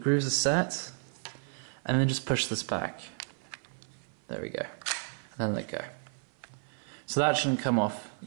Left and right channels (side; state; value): left; silent; 56 dB below the other